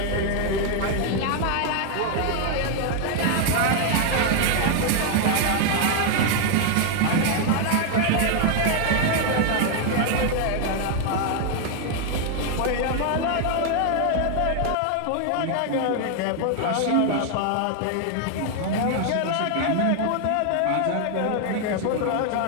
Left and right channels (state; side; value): different; both; correlation 0.00